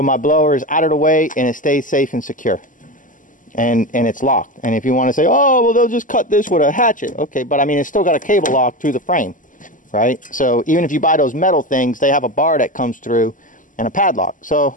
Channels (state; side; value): late; right; 0.38 ms